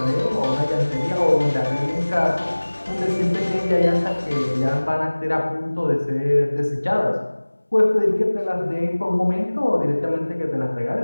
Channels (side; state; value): both; inverted; correlation -1.00